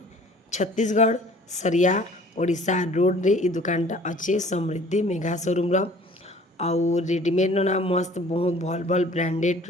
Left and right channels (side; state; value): both; normal; correlation 0.51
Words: छत्तीसगढ़ सरिया ओडिशा रोड रे ई दुकान अच्छे समृद्धि मेघा शोरूम आउ रेडीमेड ना मस्त बहुत भल भल